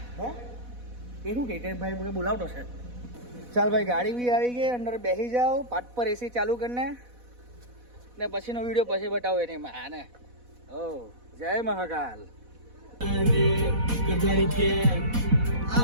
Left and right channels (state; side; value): late; left; 4.1 ms